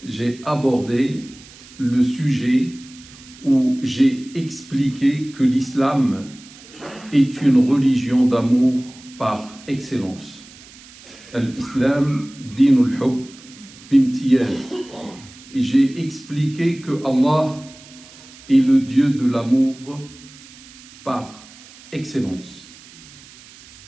j'ai abordé le sujet où j'ai expliqué que l'islam est une religion d'amour par excellence. L'islam, dinul hub bimtiyaz. Et j'ai expliqué que Allah est le Dieu de l'amour par excellence.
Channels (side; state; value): right; noise; hiss, 21 dB below the sound